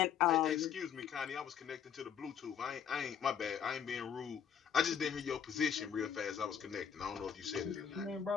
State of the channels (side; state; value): right; quieter; 8.2 dB